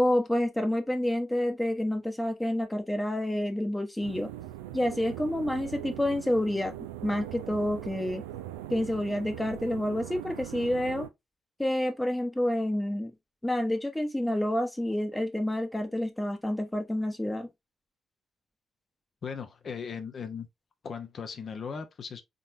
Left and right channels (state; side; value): normal; both; correlation 0.95